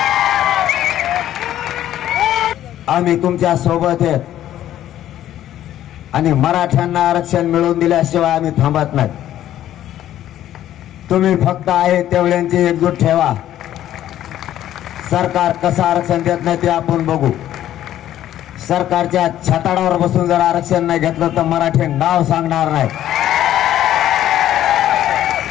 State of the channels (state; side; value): quieter; right; 12.3 dB